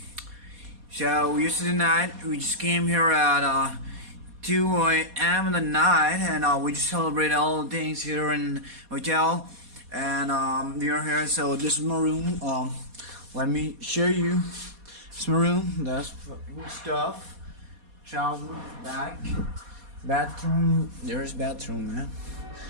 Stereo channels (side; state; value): left; late; 4.2 ms